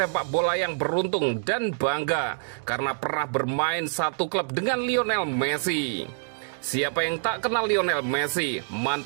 bola yang beruntung dan bangga karena pernah bermain satu klub dengan Lionel Messi. Siapa yang tak kenal Lionel Messi,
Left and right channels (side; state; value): left; silent; digital silence